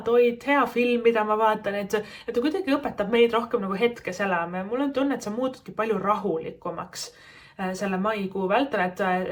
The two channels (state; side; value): identical; both; correlation 1.00